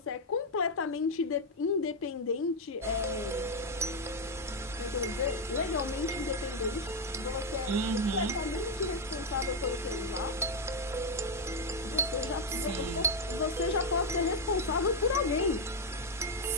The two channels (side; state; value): both; normal; correlation 0.03